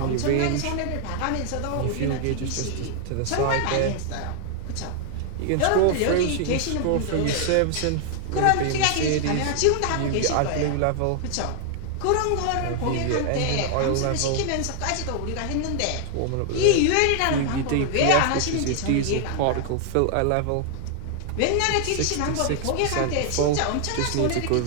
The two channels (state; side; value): different; both; correlation 0.00